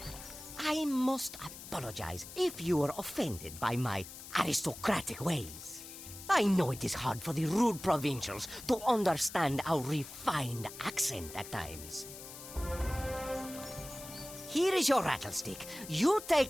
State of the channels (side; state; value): left; noise; hiss, 13 dB below the sound